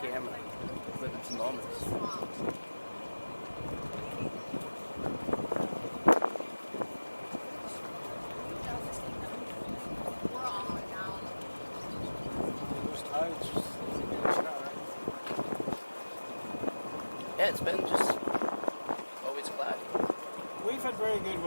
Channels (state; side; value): inverted; both; correlation -1.00